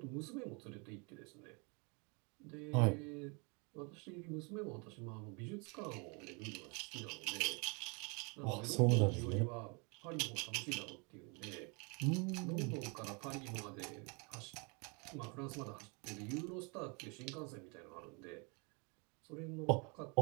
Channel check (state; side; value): quieter; left; 32.4 dB